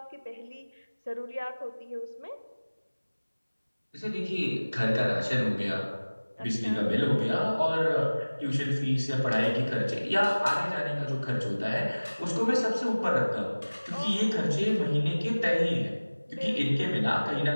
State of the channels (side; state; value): both; inverted; correlation -1.00